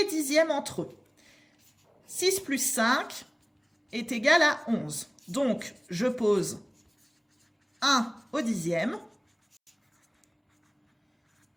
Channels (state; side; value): identical; both; correlation 1.00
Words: dixièmes entre eux. 6 plus 5 est égal à 11. Donc, je pose 1 au dixième